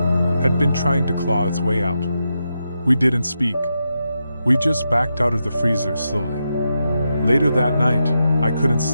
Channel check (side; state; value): both; inverted; correlation -0.86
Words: had been trying to claw its way out. We didn't speak. We just backed out of the freezer slowly. Later that night, I couldn't